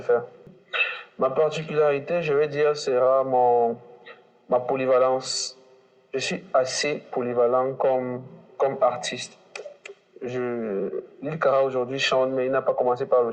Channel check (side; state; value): both; identical; correlation 1.00